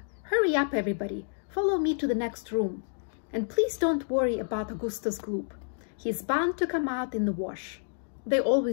Hurry up everybody, follow me to the next room. And please don't worry about Augustus Gloop. He's bound to come out in the wash. They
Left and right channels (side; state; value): right; silent; digital silence